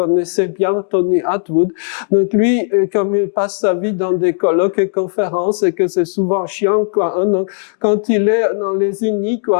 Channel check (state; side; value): silent; right; digital silence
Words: bien, Tony Attwood. Donc lui, comme il passe sa vie dans des colloques et conférences et que c'est souvent chiant, quoi, hein, donc quand il est dans les unis,